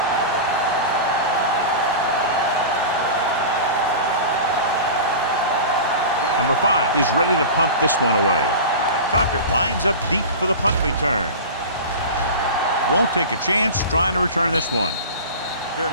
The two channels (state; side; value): inverted; both; correlation -0.31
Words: Number 5 is ready to punt this one away. Tucker lines up deep for the punt return. Won't take a chance trying to return this one. Fair